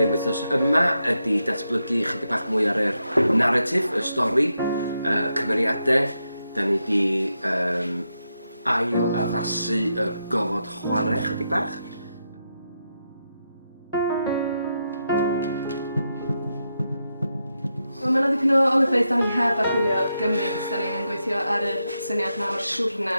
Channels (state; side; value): inverted; both; correlation -0.85